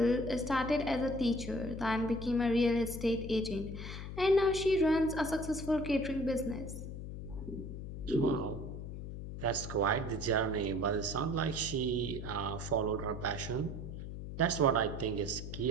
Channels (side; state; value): left; noise; hum, 8 dB below the sound